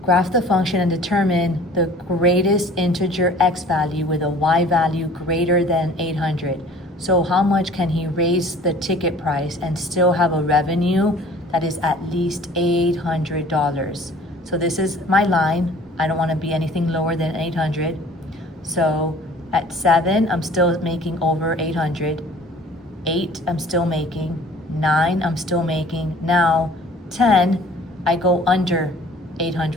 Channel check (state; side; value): normal; both; correlation 0.49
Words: Graph the function and determine the greatest integer x value with a y value greater than 800. So how much can he raise the ticket price and still have a revenue that is at least $800? So this is my line. I don't want to be anything lower than 800. So at 7, I'm still making over 800. 8, I'm still making. 9, I'm still making. Now 10, I go under